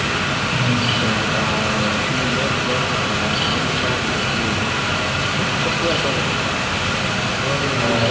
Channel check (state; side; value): identical; both; correlation 1.00